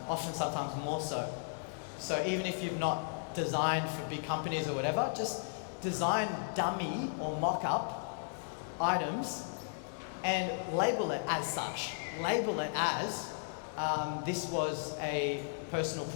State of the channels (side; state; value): right; silent; digital silence